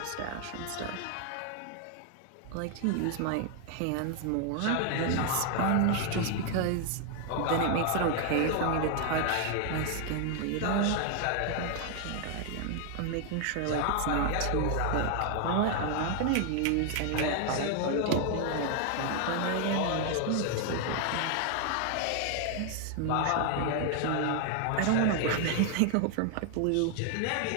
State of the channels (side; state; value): both; different; correlation 0.00